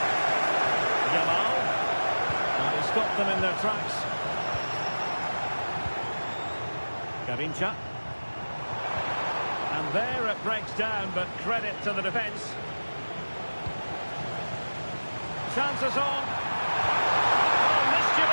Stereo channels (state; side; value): inverted; both; correlation -1.00